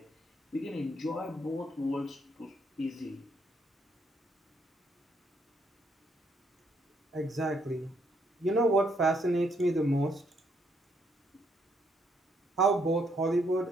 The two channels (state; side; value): normal; both; correlation 0.72